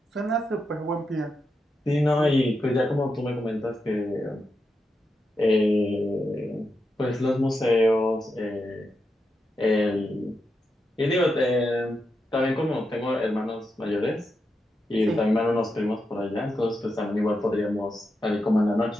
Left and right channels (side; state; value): both; normal; correlation 0.86